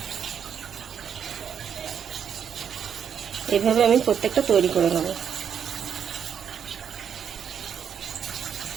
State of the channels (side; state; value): left; quieter; 8.0 dB